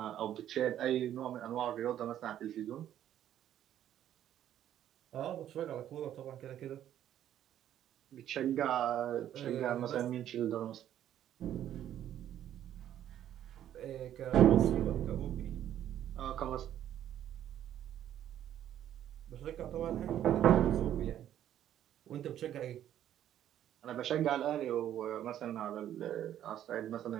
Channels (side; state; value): left; quieter; 11.2 dB